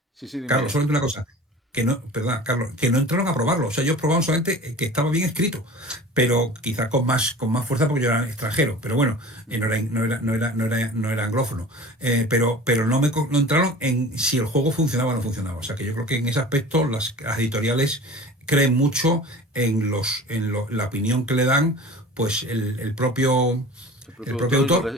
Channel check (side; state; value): both; normal; correlation 0.40